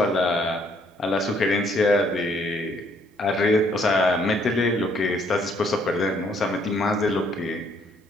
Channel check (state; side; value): normal; both; correlation 0.66